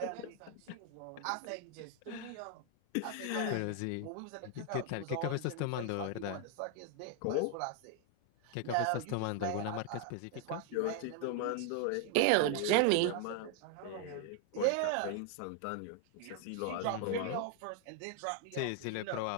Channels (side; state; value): both; different; correlation 0.00